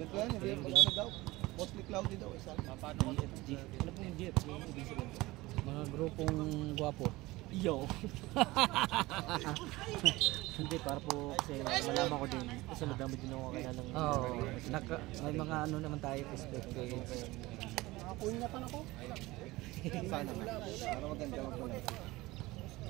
yan, hindi ano daw. Mostly cloudy daw. Ano po yung GF? Mga grupong gwapo. Yo! Hindi, para po kasi malaman ko din. Kasi madami din ako kaya ng... Oo, may mga ano naman tayo perspective. Nakapunyatan ako. Sana nga. Para maganda mag-vlog.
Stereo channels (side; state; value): left; quieter; 20.0 dB